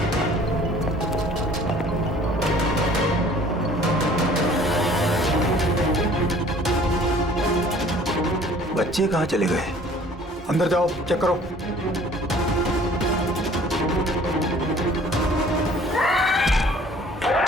बच्चे कहाँ चले गए? अंदर जाओ, चेक करो।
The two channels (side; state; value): both; normal; correlation 0.52